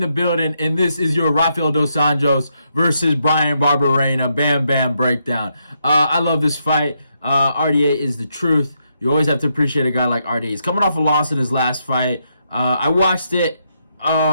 the building, and this is your Rafael dos Anjos versus Bryan Barberena Bam Bam breakdown. I love this fight. RDA is the truth. You always have to appreciate a guy like RDA. He's coming off a loss in his last fight. I watched it.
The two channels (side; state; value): both; inverted; correlation -0.79